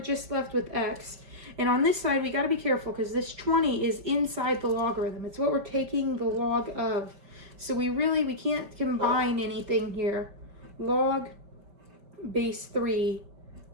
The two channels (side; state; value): left; late; 5.1 ms